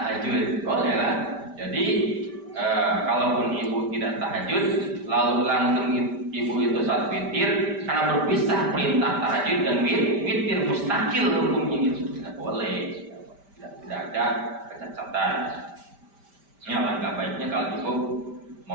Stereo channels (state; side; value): late; left; 5.1 ms